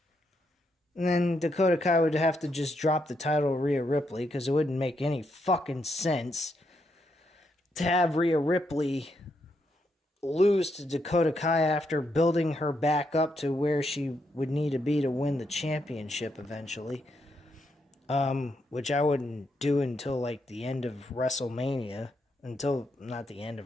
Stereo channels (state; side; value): normal; both; correlation 0.79